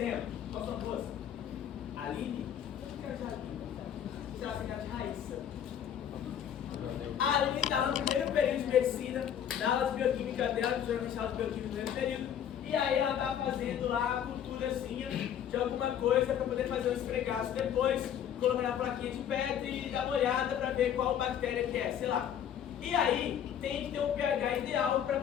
qual são duas? Aline? Será que é de Raíssa? A Aline está no primeiro período de medicina, na aula de bioquímica dela, que geralmente aula de bioquímica no primeiro período, e aí ela está fazendo lá a culturazinha de alguma coisa para poder fazer um esfregaço depois, colocar na plaquinha de pedra e dar uma olhada para ver qual bactéria que é, sei lá. E aí tem que ter um pH ideal para a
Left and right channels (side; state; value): right; quieter; 9.3 dB